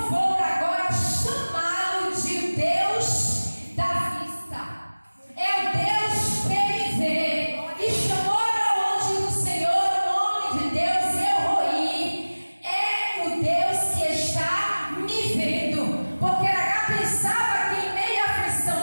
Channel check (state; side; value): inverted; both; correlation -1.00